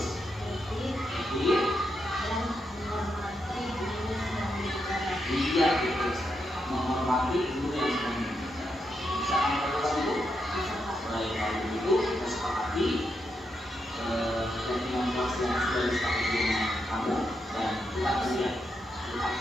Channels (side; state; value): both; normal; correlation 0.83